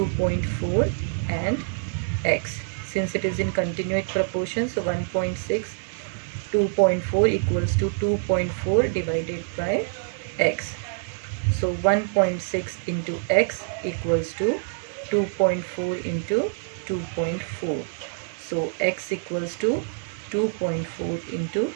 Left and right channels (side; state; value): left; silent; digital silence